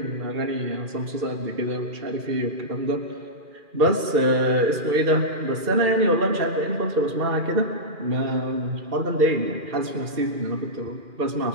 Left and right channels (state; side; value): late; left; 2.4 ms